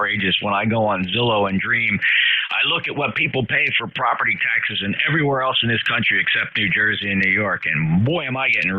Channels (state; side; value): identical; both; correlation 1.00